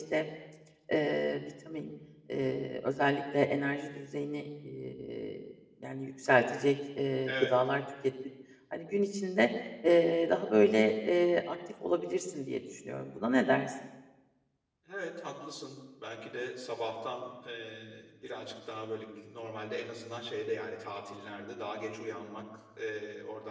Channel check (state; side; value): identical; both; correlation 1.00